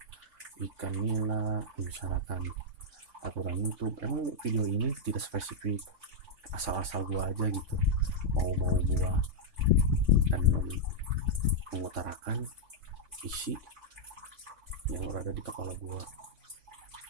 ikan nila, membicarakan aturan YouTube. Emang video ini tidak spesifik, asal-asal gue aja gitu, mau gue, dan mengutarakan isi yang berada di kepala gue.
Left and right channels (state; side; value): late; left; 3.6 ms